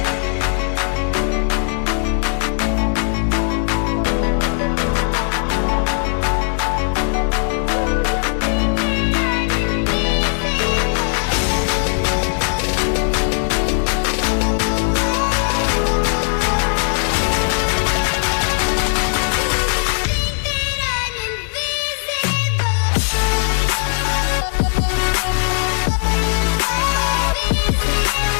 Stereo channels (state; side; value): silent; right; 60 dB below the other